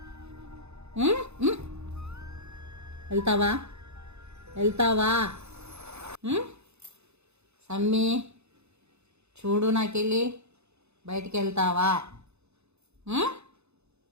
వెళ్తావా? వెళ్తావా సమ్మి? చూడు నాకెళ్ళి బయటికి వెళ్తావా?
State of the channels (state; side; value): late; left; 0.81 ms